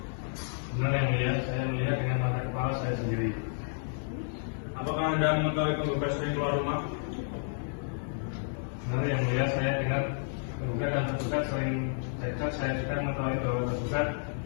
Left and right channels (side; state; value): right; silent; 57 dB below the other